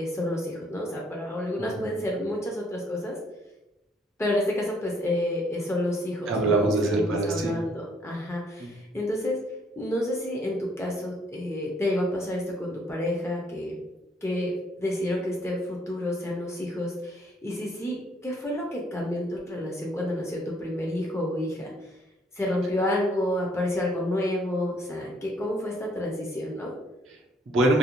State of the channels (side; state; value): both; normal; correlation 0.65